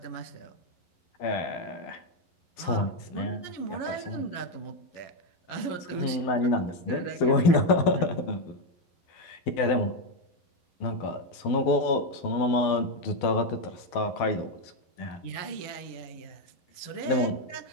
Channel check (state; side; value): late; right; 11 ms